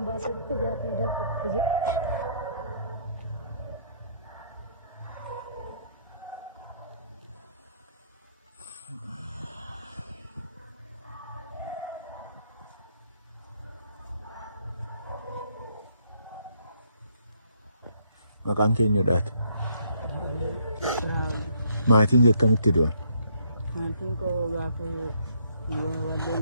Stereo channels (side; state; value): both; inverted; correlation -0.68